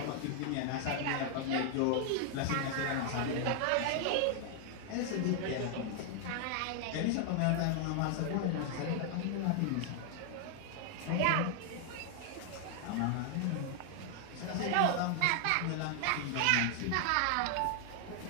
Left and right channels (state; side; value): different; both; correlation 0.00